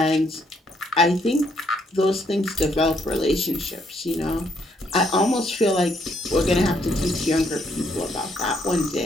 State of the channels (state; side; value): normal; both; correlation 0.71